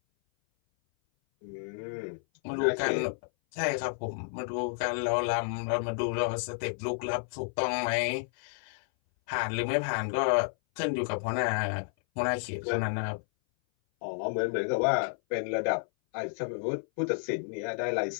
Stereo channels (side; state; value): right; silent; 57 dB below the other